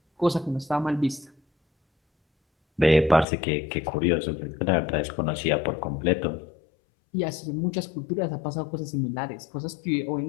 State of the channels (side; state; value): right; drops out; at 3.2 s